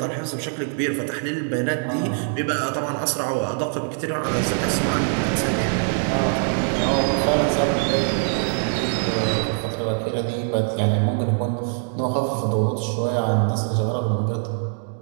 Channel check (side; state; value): left; silent; 60 dB below the other